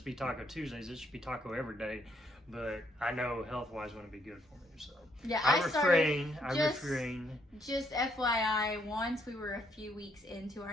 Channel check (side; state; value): both; normal; correlation 0.72